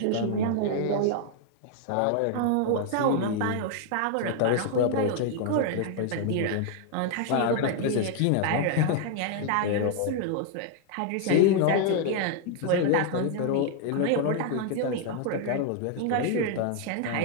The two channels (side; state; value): both; different; correlation 0.00